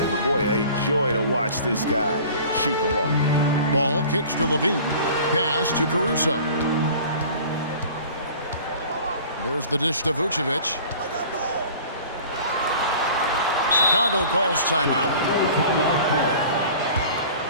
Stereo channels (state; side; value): inverted; both; correlation -0.44